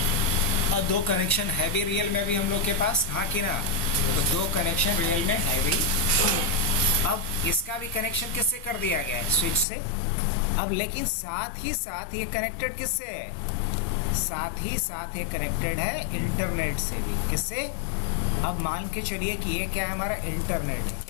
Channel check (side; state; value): right; drops out; at 9.7 s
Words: और 2 कनेक्शन है भी रियल में भी हम लोग के पास, हाँ कि ना? तो 2 कनेक्शन रियल में है भी। अब इसका भी कनेक्शन किससे कर दिया गया है? स्विच से। अब लेकिन साथ ही साथ ये कनेक्टेड किससे है? साथ ही साथ ये कनेक्टेड है इंटरनेट से भी। किससे? अब मान के चलिए कि ये क्या है, हमारा इंटरनेट है।